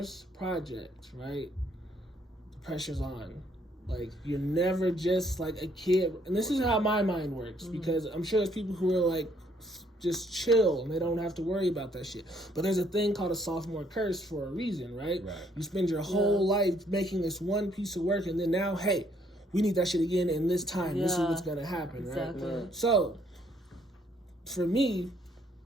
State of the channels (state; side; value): normal; both; correlation 0.67